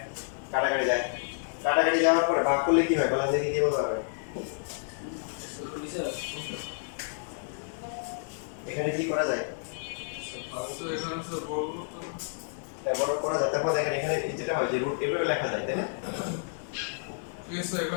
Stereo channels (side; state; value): right; silent; digital silence